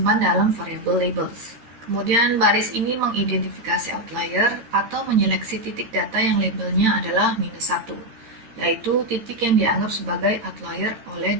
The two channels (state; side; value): late; left; 13 ms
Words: dalam variable labels. Kemudian baris ini mengidentifikasi outlier atau menyeleksi titik data yang labelnya adalah -1. Yaitu titik yang dianggap sebagai outlier oleh